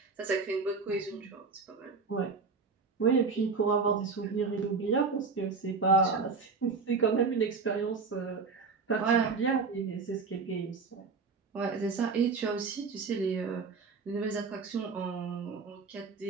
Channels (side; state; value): left; quieter; 4.7 dB